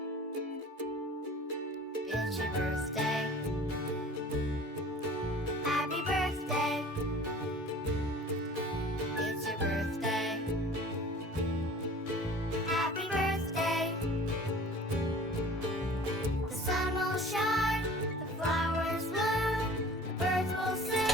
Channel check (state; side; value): normal; both; correlation 0.45